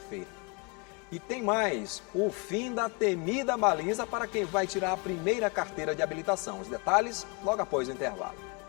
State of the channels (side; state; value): right; quieter; 31.4 dB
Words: E tem mais, o fim da temida baliza para quem vai tirar a primeira carteira de habilitação. Os detalhes logo após o intervalo.